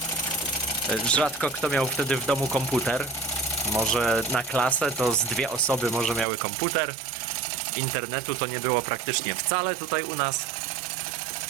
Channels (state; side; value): drops out; left; at 6.2 s